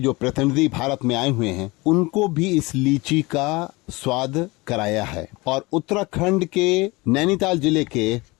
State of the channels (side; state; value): right; quieter; 23.5 dB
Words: जो प्रतिनिधि भारत में आए हुए हैं उनको भी इस लीची का स्वाद कराया है। और उत्तराखंड के नैनीताल जिले के